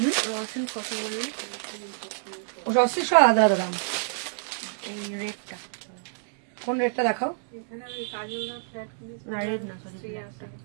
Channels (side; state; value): left; silent; digital silence